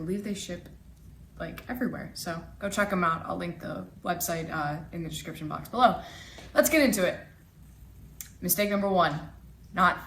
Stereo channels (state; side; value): identical; both; correlation 1.00